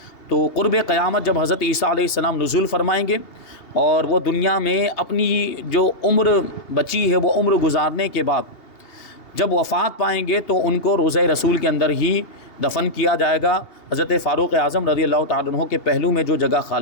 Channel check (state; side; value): late; right; 2.8 ms